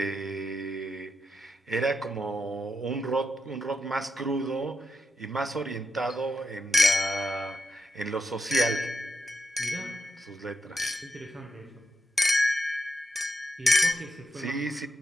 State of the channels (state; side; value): normal; both; correlation 0.85